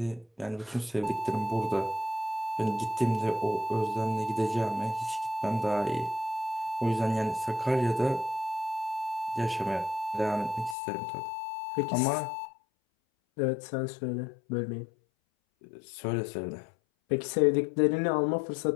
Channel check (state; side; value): drops out; right; at 10.8 s